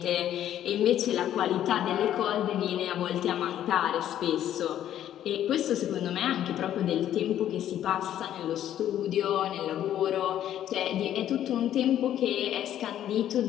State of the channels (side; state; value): right; quieter; 11.3 dB